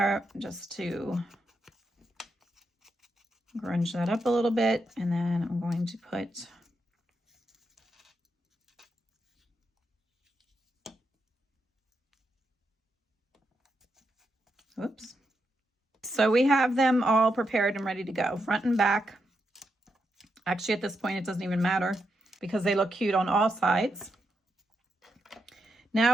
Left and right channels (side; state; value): both; normal; correlation 0.83